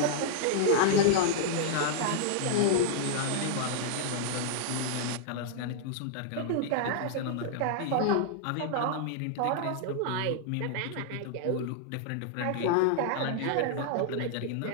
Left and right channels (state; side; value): different; both; correlation -0.01